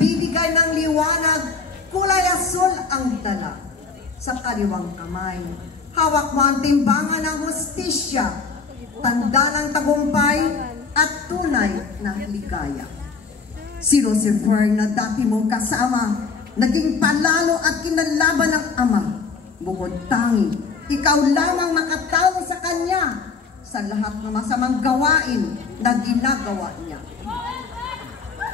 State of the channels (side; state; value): right; quieter; 4.9 dB